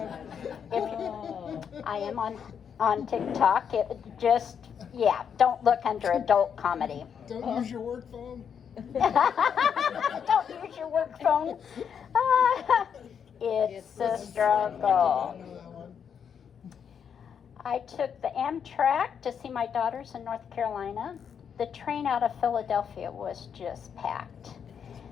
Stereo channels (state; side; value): quieter; right; 7.5 dB